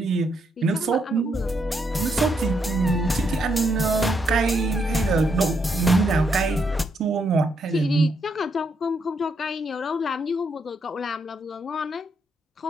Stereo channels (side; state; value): both; normal; correlation 0.77